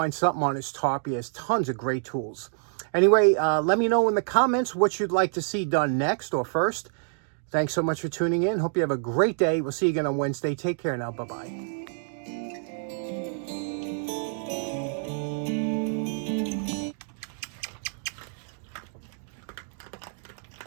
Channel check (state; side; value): silent; left; digital silence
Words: something on his top. He has tons of great tools. Anyway, let me know in the comments what you'd like to see done next or first. Thanks so much for tuning in. Hope you have a great day. We'll see you again on Wednesday. Take care now. Bye-bye.